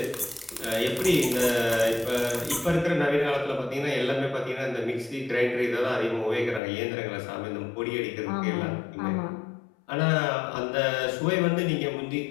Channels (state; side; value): drops out; right; at 6.6 s